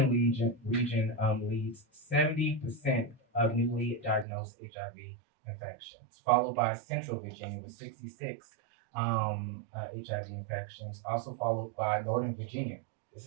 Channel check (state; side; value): drops out; left; at 4.2 s